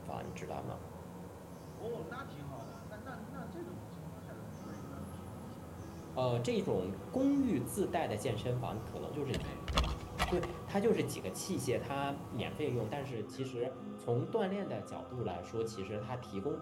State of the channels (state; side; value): identical; both; correlation 1.00